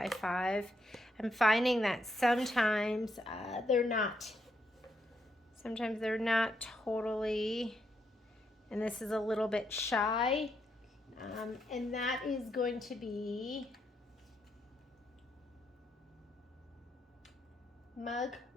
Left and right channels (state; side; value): normal; both; correlation 0.79